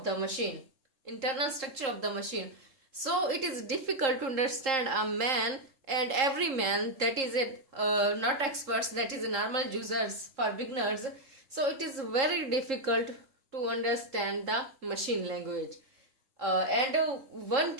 the machine. So it is difficult to understand a man and every man, that is not experts, that is normal users, for beginners. So it is very difficult to understand the machine language. And one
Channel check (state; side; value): late; left; 3.7 ms